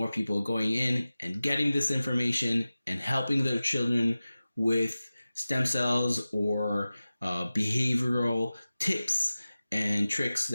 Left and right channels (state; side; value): inverted; both; correlation -0.96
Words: people going in and getting this information and helping their children with stem cells or behavioral tips and tricks